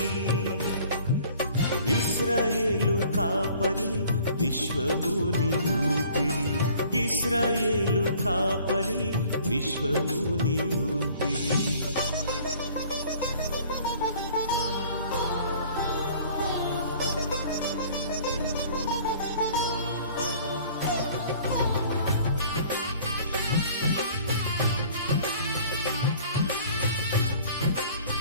ఇశ్రాయేలు కాపరి విశ్వముని ఊపిరి, ఇశ్రాయేలు కాపరి విశ్వముని ఊపిరి.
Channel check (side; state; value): both; inverted; correlation -0.52